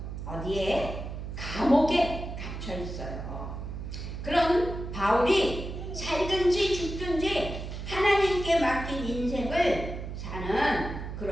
어디에? 감옥에 갇혀 있어요. 그런 바울이 살든지 죽든지 하나님께 맡긴 인생을 사는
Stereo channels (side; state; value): right; noise; hum, 7 dB below the sound